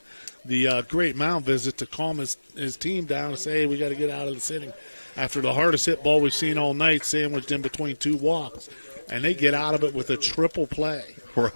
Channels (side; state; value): both; inverted; correlation -1.00